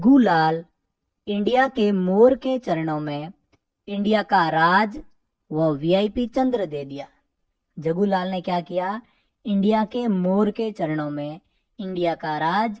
लाल इंडिया के मोर के चरणों में इंडिया का राज व वीआईपी चंद्र दे दिया। जग्गू लाल ने क्या किया? इंडिया के मोर के चरणों में इंडिया का राज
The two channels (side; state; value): both; identical; correlation 1.00